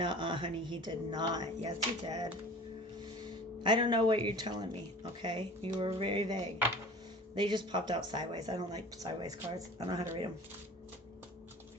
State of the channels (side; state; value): both; normal; correlation 0.42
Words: honey, he did not. Yes, he did. I don't know what you're telling me, okay? You were very vague. They just popped out sideways. I don't like sideways cards. I don't know how to read them.